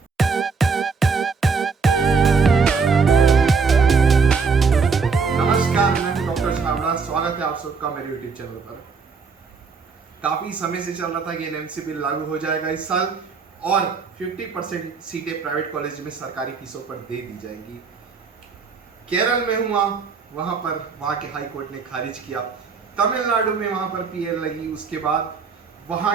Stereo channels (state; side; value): quieter; left; 5.0 dB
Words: नमस्कार, मैं हूं डॉक्टर छाबड़ा। स्वागत है आप सबका मेरे यूट्यूब चैनल पर। काफी समय से चल रहा था कि एनएमसी बिल लागू हो जाएगा इस साल और 50% सीटें प्राइवेट कॉलेज में सरकारी फीसों पर दे दी जाएंगी। केरल में हुआ, वहां के हाई कोर्ट ने खारिज किया। तमिलनाडु में वहां पर पीएल लगी, उसके बाद